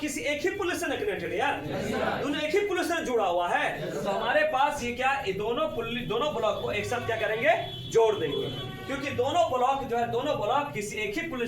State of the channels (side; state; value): both; identical; correlation 1.00